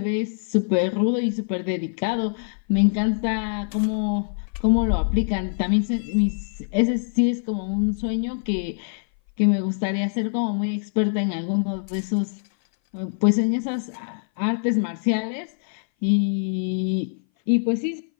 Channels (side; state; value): right; silent; 59 dB below the other